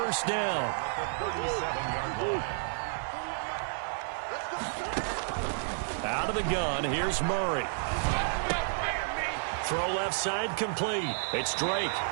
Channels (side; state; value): left; silent; 57 dB below the other